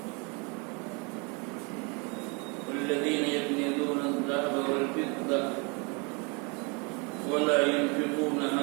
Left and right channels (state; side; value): quieter; left; 32.0 dB